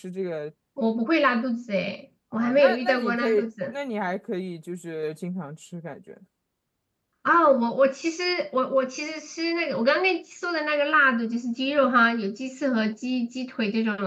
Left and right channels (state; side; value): identical; both; correlation 1.00